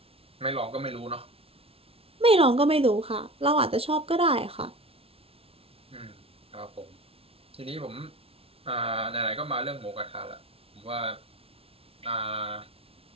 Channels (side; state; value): left; late; 0.28 ms